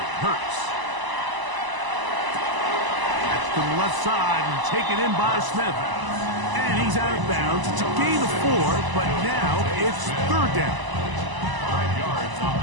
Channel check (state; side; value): late; left; 1.0 ms